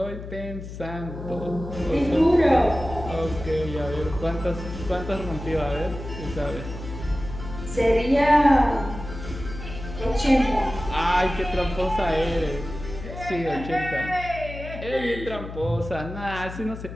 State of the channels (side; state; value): left; noise; hum, 10 dB below the sound